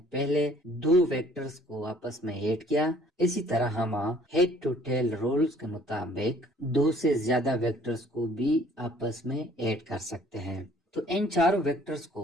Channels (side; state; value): both; normal; correlation 0.57